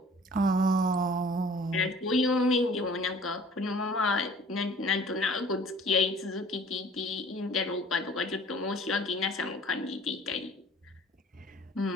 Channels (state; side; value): normal; both; correlation 0.50